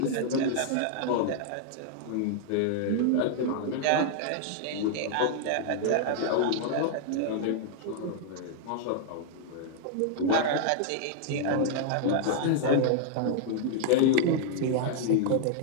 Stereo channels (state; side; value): different; both; correlation -0.01